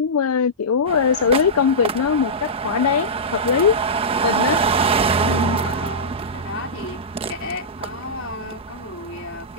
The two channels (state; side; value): normal; both; correlation -0.14